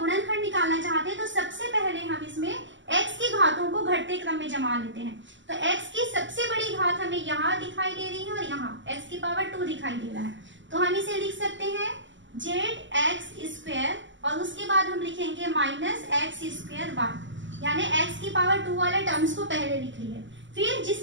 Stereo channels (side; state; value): left; late; 0.54 ms